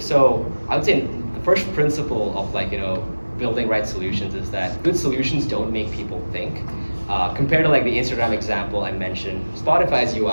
I would say the first principle of like building right solutions is that good solutions don't make people think. Compared to like the Instagram example I mentioned, Spotify's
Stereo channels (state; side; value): inverted; both; correlation -1.00